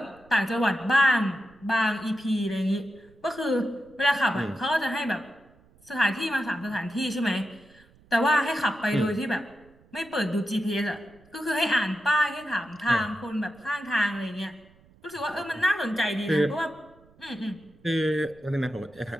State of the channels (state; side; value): noise; right; rumble, 28 dB below the sound